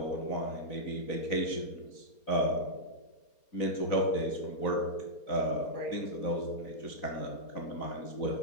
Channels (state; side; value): late; right; 4.3 ms